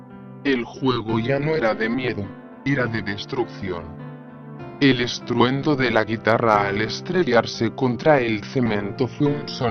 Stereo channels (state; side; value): identical; both; correlation 1.00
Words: El juego ya no era de miedo, era de destrucción. El estruendo de la guitarra al estrellarse contra el cemento fue un